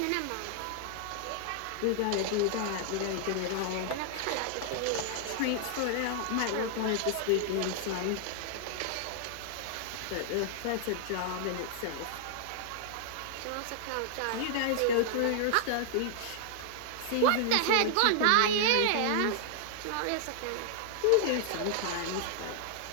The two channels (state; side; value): different; both; correlation -0.01